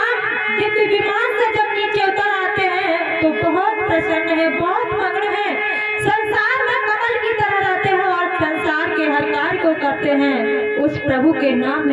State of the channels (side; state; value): both; identical; correlation 1.00